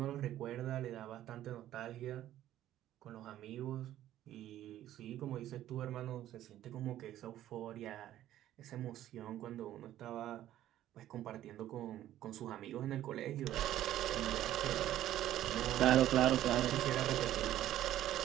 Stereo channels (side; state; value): left; quieter; 12.9 dB